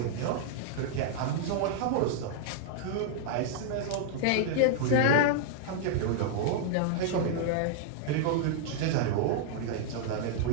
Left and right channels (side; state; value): both; different; correlation -0.01